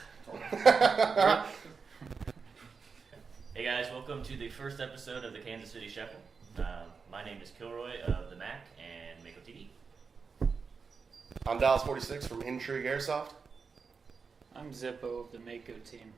Hey guys, welcome to the first episode of the Kansas City Shuffle. My name is Kilroy of the Mac and Mako TV. I'm Dallas 46 from Intrigue Airsoft. I'm Zippo of the Mako team,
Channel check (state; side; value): quieter; left; 5.2 dB